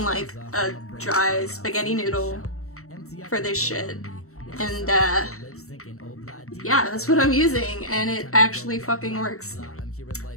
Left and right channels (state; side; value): late; right; 0.64 ms